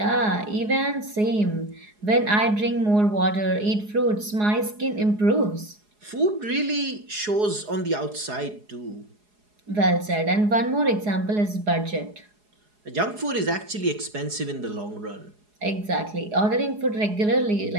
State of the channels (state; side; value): late; left; 4.8 ms